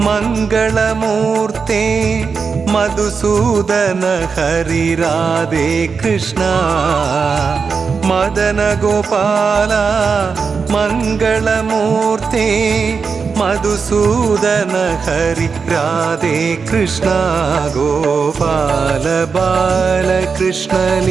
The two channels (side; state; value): left; quieter; 5.4 dB